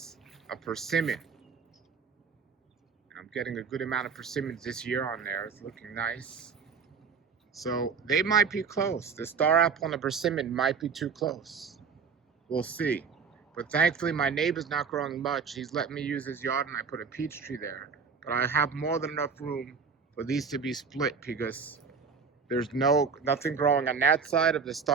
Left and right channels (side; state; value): left; quieter; 5.8 dB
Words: a persimmon. I'm getting a good amount of persimmons this year on there. It's looking nice. So they might be close. The star apple and the persimmon might be too close. We'll see. But thankfully my neighbor's not growing much. He's letting me use his yard and I put a peach tree there. But I have more than enough room for these to be split because there's nothing growing on that side of the